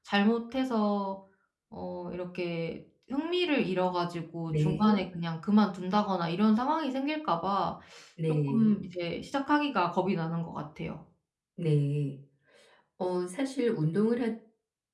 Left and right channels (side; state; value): both; identical; correlation 1.00